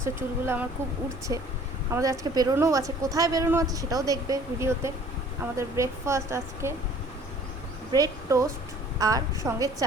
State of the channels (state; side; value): normal; both; correlation 0.52